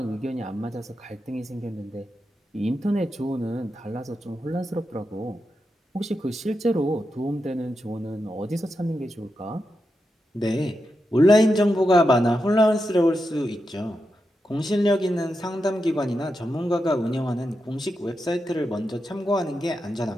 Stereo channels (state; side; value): normal; both; correlation 0.87